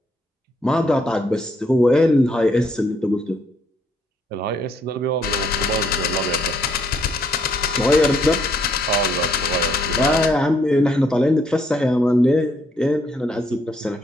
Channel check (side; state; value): both; normal; correlation 0.71